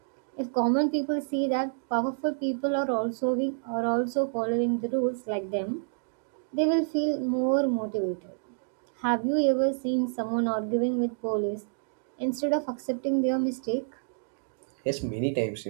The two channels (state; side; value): silent; left; digital silence